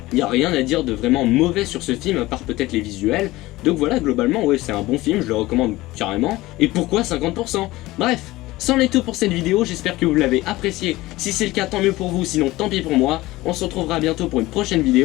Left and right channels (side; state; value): right; quieter; 18.6 dB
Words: y a rien à dire de vraiment mauvais sur ce film à part peut-être les visuels. Donc voilà, globalement ouais c'est un bon film, je le recommande carrément. Et pourquoi 50%? Bref, c'en est tout pour cette vidéo, j'espère que vous l'avez apprécié. Si c'est le cas tant mieux pour vous, sinon tant pis pour moi. On se retrouvera bientôt pour une prochaine